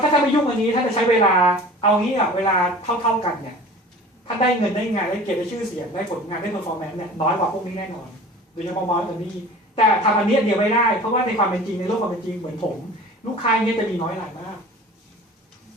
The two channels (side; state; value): both; normal; correlation 0.42